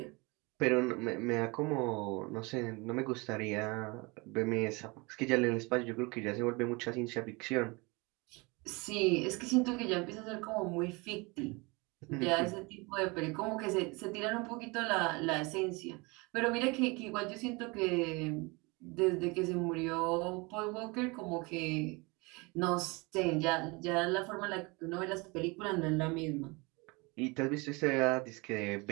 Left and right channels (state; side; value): quieter; left; 26.9 dB